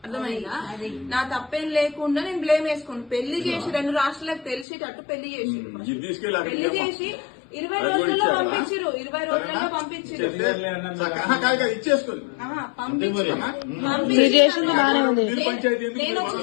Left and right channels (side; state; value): right; drops out; at 4.7 s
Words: అర్థమైందా? నా తప్పేం లేకుండా నేను బ్లేమ్ వేసుకోను. పెళ్లి చేసి 2 రాష్ట్రాలకు తెలిసేటట్టు పెళ్లి చేసి 20 రోజుల్లో పంపించారు. 20 రోజుల్లో పంపించారు. నేను వచ్చిన